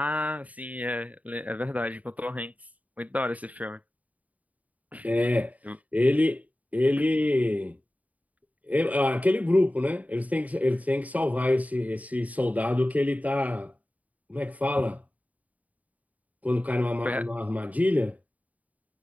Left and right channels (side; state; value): left; late; 0.072 ms